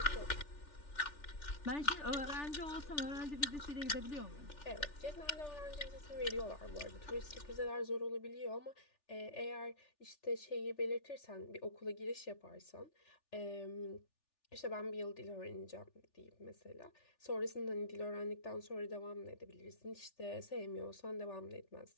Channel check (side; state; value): right; late; 3.4 ms